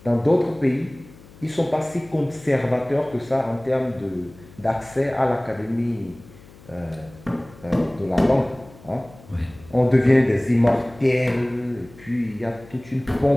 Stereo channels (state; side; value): noise; left; hum, 22 dB below the sound